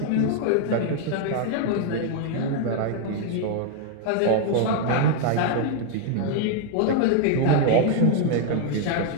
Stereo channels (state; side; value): different; both; correlation 0.00